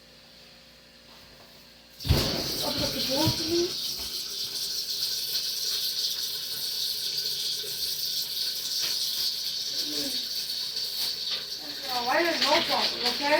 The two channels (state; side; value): identical; both; correlation 1.00